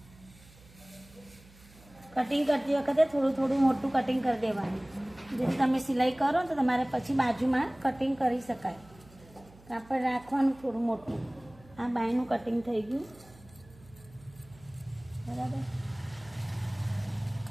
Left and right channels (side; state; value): right; noise; hum, 24 dB below the sound